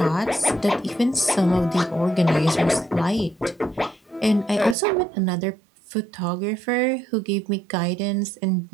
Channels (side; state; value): left; drops out; at 4.8 s